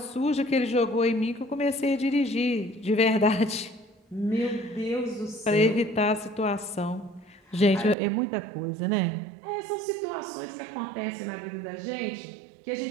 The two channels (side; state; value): left; drops out; at 8.0 s